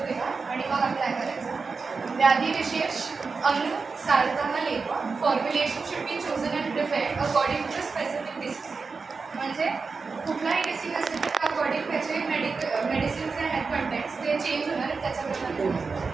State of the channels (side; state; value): left; quieter; 4.6 dB